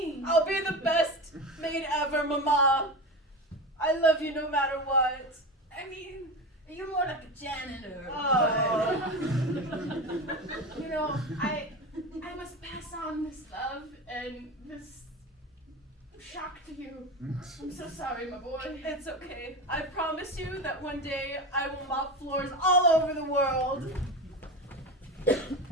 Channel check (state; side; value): normal; both; correlation 0.24